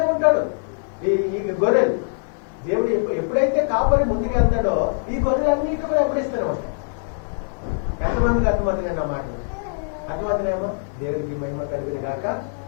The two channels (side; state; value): right; silent; digital silence